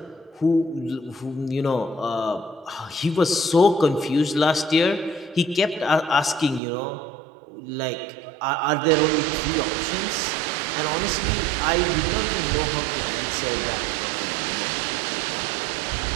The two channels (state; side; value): drops out; left; at 6.6 s